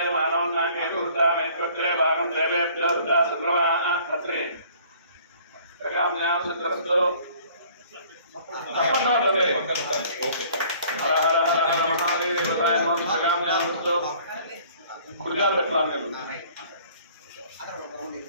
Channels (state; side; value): inverted; both; correlation -0.54